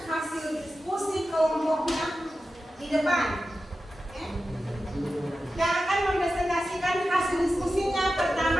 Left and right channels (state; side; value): normal; both; correlation 0.92